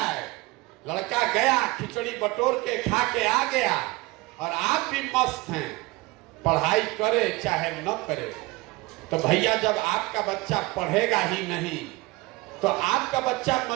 लड़का गया खिचड़ी बटोर के खा के आ गया, और आप भी मस्त हैं, पढ़ाई करे चाहे न करे। तो भैया जब आपका बच्चा पढ़ेगा ही नहीं तो आपका बच्चा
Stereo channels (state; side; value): quieter; left; 22.4 dB